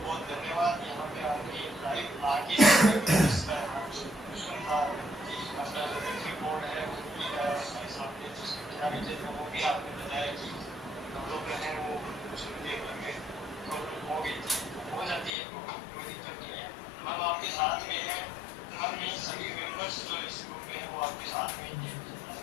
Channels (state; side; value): drops out; right; at 15.3 s